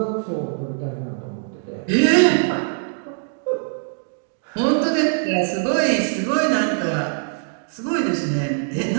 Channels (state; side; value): silent; left; digital silence